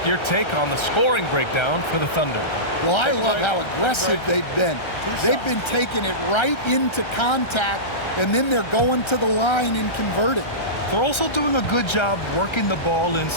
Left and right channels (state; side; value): late; right; 1.3 ms